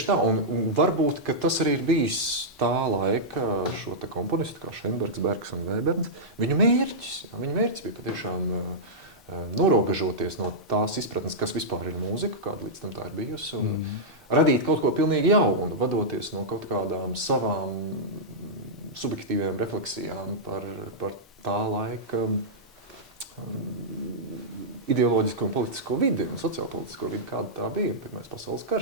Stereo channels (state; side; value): normal; both; correlation -0.10